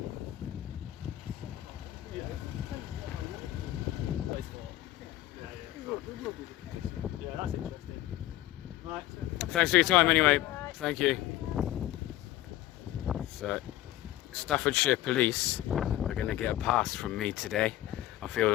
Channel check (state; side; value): quieter; right; 15.0 dB